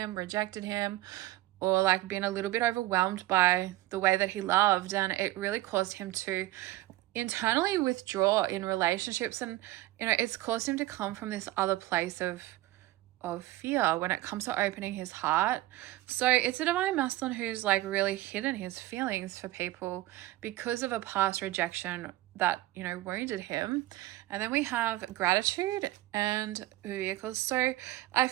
rejected him, or like been a little bit overwhelmed by the way that he loved, and it really caused him to internally withdraw in relationships. And, you know, it's caused him to come from this other place of fear when it comes to opening his heart. So it's a divine masculine who's like really hidden his feelings for people because of a past rejection that, you know, wounded him. And then we have gratitude and vehicles. So I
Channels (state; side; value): quieter; left; 16.8 dB